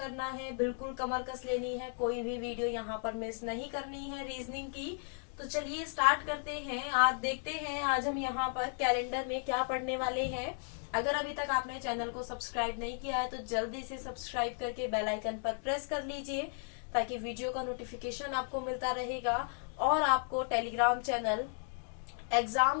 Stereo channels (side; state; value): right; silent; 54 dB below the other